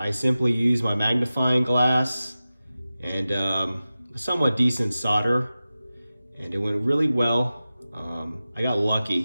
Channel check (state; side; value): inverted; both; correlation -0.95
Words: simply use my magnifying glass and a somewhat decent solder, and it went really well. I got